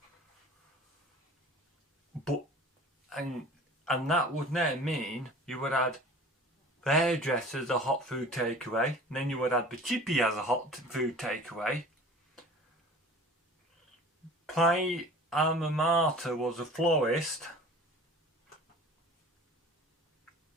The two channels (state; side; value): normal; both; correlation 0.43